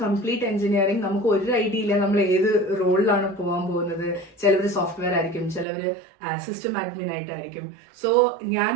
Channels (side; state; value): left; drops out; at 5.7 s